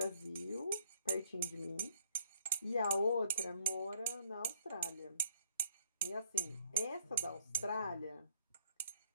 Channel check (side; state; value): both; inverted; correlation -0.69